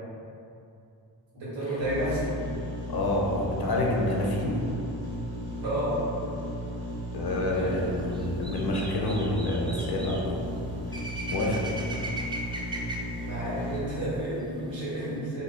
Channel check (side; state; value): both; normal; correlation 0.28